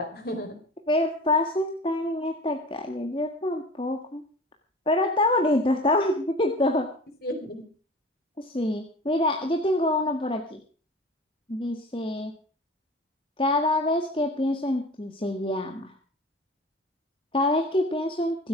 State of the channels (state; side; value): normal; both; correlation 0.38